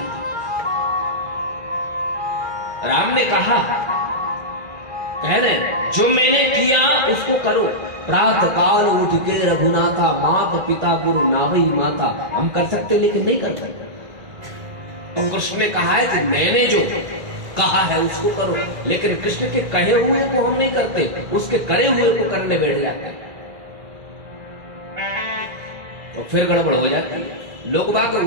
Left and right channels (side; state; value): left; late; 2.0 ms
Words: राम ने कहा, कह रहे जो मैंने किया उसको करो, प्रातः काल उठ के रघुनाथा, माता पिता गुरु नावई माता। हम कर सकते लेकिन नहीं कर सकते। तो कृष्ण ने कहा है कि मैंने जो कहा है उसको करो, लेकिन कृष्ण के कहे हुए को हम नहीं करते, उसके करे हुए को करने बैठ जाते हैं, तो फिर गड़बड़ हो जाती है। लोग बात